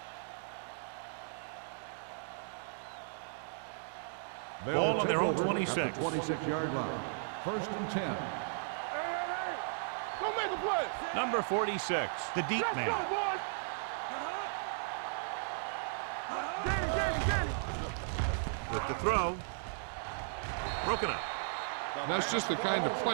They'll Ball on their take own over 26. at the 26-yard line. First and 10. Hey. Don't make a play. Number 46, the deep Let's man. go, boys. Get it, get it, get it. With the throw. Broken up. That's just the kind of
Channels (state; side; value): silent; left; digital silence